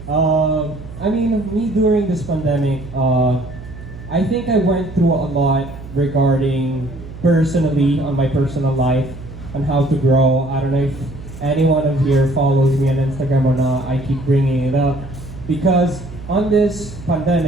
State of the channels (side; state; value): right; noise; hum, 14 dB below the sound